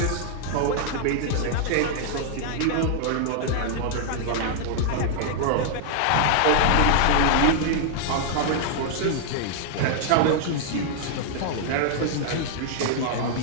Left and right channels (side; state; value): both; different; correlation 0.00